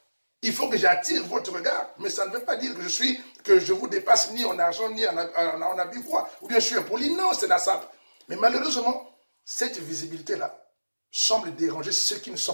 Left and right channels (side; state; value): both; inverted; correlation -1.00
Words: Il faut que j'attire votre regard. Mais ça ne veut pas dire que je vous dépasse ni en argent, ni en habit quoi. Ou bien je suis impoli. Non, c'est la sape. Mais malheureusement, cette visibilité-là semble déranger ceux qui ne